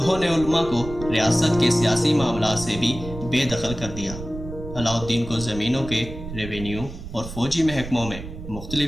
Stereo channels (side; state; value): right; noise; rumble, 11 dB below the sound